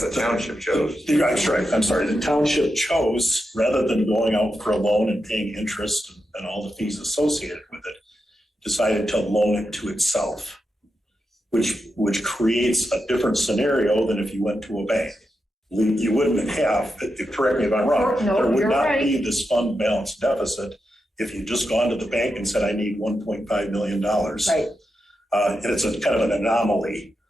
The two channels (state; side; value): normal; both; correlation 0.87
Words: township chose. That's right. I'm sorry. The township chose, rather than going out for a loan and paying interest and all the fees associated with it, decided to loan it to itself, which creates a different scenario than if you went to a bank. You wouldn't have, correct me if I'm wrong, No, there would you're not right. be this fund balance deficit if you just gone to the bank and said, I need $1.5 million. Right. And it's a kind of an anomaly,